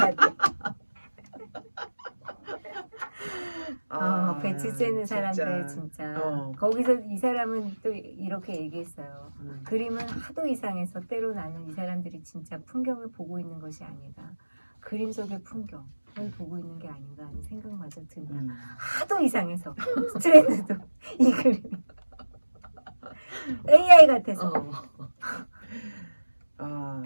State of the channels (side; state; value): both; inverted; correlation -1.00